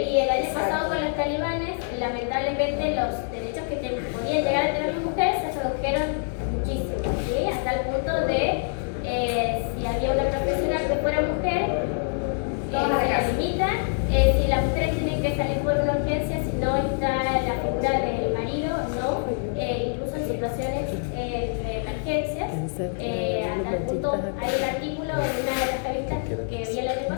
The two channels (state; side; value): silent; right; 61 dB below the other